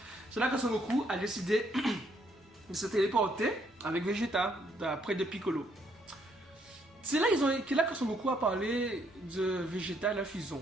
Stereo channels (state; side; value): normal; both; correlation 0.70